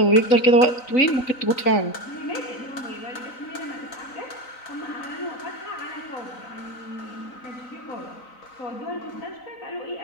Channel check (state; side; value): late; right; 3.9 ms